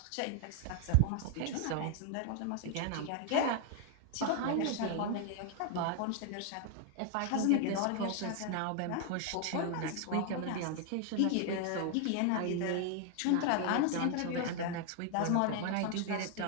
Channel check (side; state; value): both; different; correlation 0.00